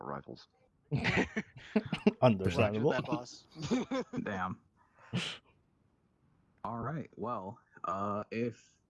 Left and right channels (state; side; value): identical; both; correlation 1.00